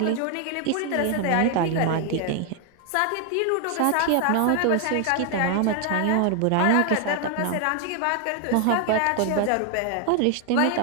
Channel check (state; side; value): different; both; correlation 0.00